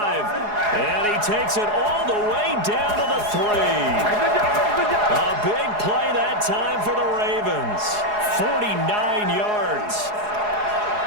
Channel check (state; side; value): late; left; 4.8 ms